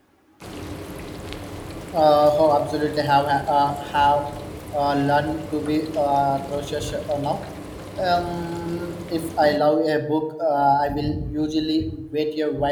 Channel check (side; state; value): both; identical; correlation 1.00